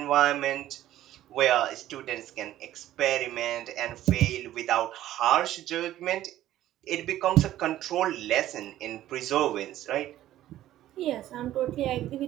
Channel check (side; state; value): left; quieter; 13.5 dB